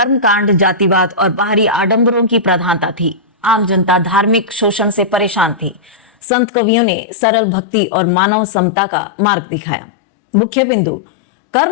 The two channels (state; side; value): drops out; right; at 6.1 s